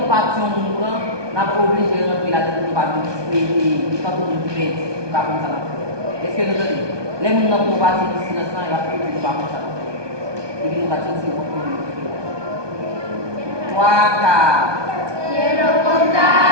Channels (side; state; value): left; late; 1.2 ms